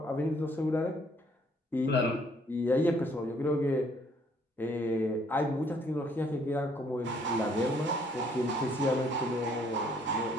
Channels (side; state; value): both; normal; correlation 0.64